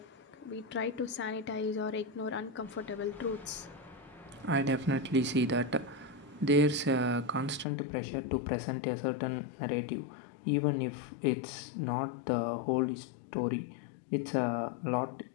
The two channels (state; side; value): drops out; right; at 7.7 s